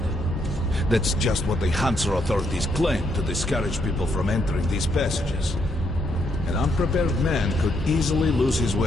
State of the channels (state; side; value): normal; both; correlation 0.75